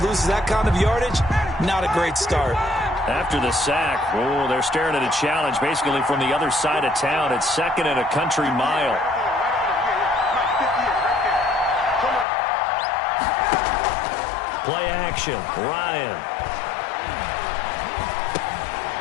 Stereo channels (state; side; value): drops out; right; at 12.2 s